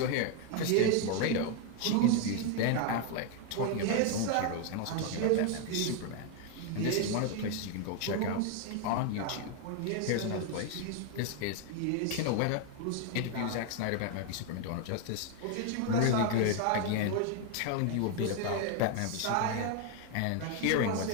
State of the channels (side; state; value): both; different; correlation 0.01